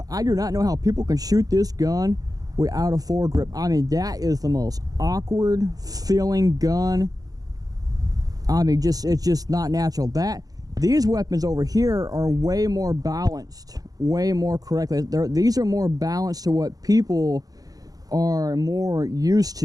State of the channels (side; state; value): left; late; 0.18 ms